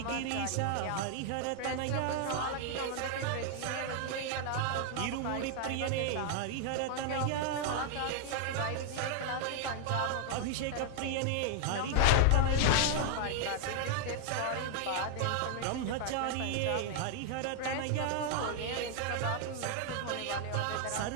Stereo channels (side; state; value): both; different; correlation 0.00